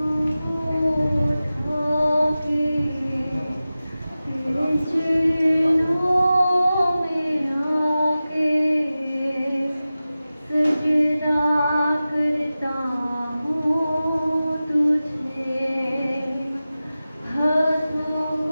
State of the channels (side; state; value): both; inverted; correlation -0.95